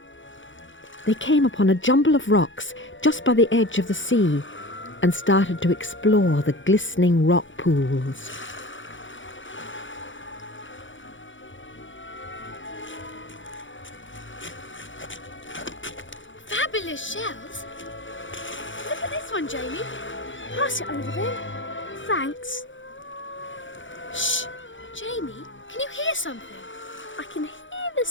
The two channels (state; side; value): late; right; 0.56 ms